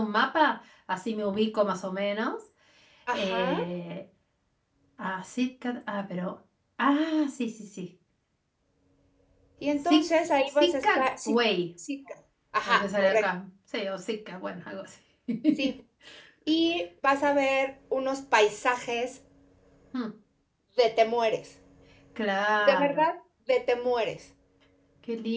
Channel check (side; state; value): both; identical; correlation 1.00